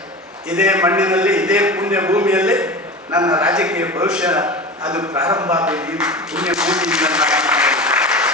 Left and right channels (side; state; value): both; normal; correlation 0.30